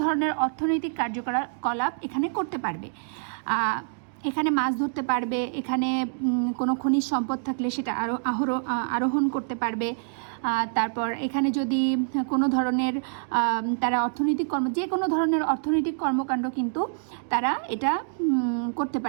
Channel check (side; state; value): left; silent; digital silence